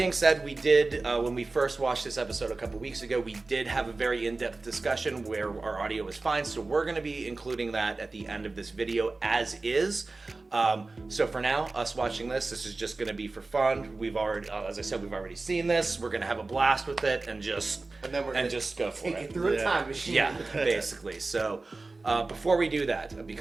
said, we did, when we first watched this episode a couple weeks ago, we did have a very in-depth discussion where our audio was fine. So we're going to be including that at the end of this video as is. So for now, us watching this is just going to be for fun. We've already, as I said, we've already seen this. We're going to have a blast with it and just go for take it. it through a time machine. Yeah, basically. So before we do that,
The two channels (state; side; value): quieter; left; 3.5 dB